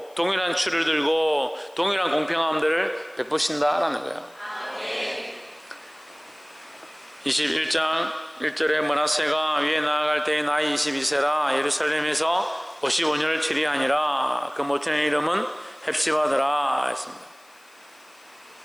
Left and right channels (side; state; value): left; noise; hiss, 30 dB below the sound